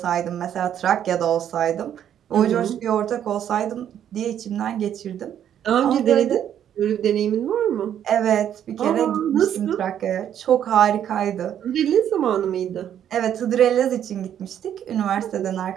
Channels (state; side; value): quieter; left; 9.9 dB